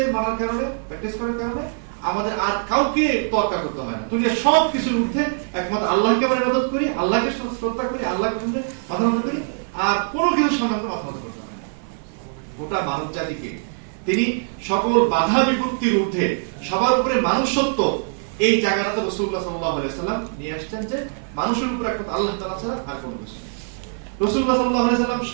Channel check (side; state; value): left; silent; 55 dB below the other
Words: মানার কারণে, প্র্যাকটিস করার কারণে আমাদের আর কাউকে তোয়াক্কা করতে হয় না। দুনিয়ার সব কিছুর ঊর্ধ্বে একমাত্র আল্লাহকে আমরা ইবাদত করি, আল্লাহকে শ্রদ্ধা করি, আল্লাহকে মাথা নত করি, আর কোনো কিছুর সামনে আমরা মাথা নত করতে হয় না। গোটা মানব জাতিকে তিনি সকল বাধা বিপত্তির ঊর্ধ্বে সবার উপরে মানুষত্ব, এই জায়গাটাতে রাসূলুল্লাহ সাল্লাল্লাহু আলাইহি ওয়াসাল্লাম নিয়ে আসছেন যে মানুষের উপরে একমাত্র আল্লাহ তাআলা ছাড়া আর কোনো কিছু নেই। রাসূলুল্লাহ সাল্লাল্লাহু আলাইহি ওয়াসাল্লাম